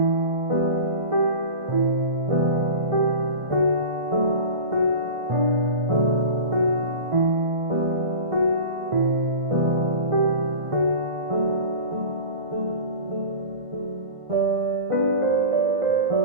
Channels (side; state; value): left; late; 1.5 ms